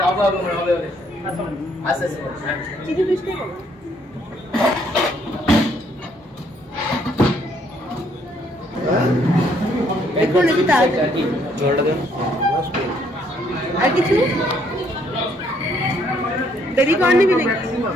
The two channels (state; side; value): normal; both; correlation 0.68